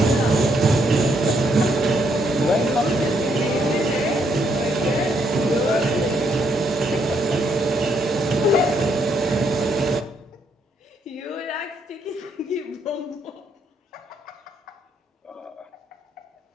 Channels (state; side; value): normal; both; correlation 0.73